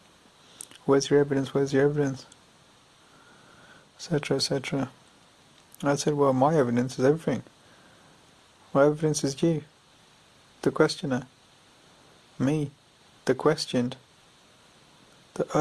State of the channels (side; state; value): both; identical; correlation 1.00